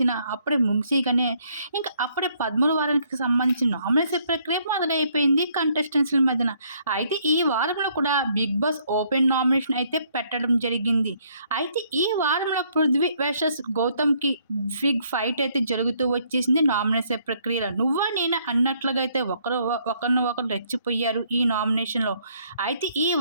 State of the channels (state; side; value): inverted; both; correlation -0.67